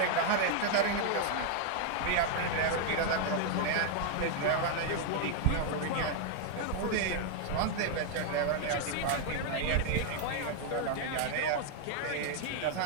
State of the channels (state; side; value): different; both; correlation 0.00